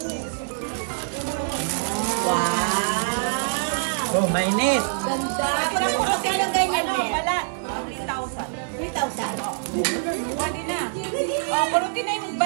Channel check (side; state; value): left; silent; 55 dB below the other